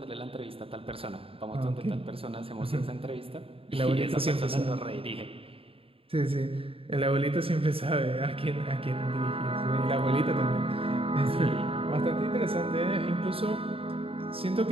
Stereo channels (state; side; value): late; left; 0.27 ms